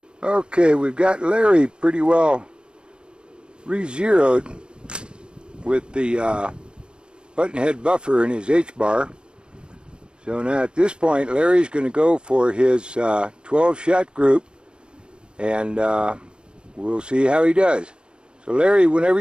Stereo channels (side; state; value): left; late; 0.052 ms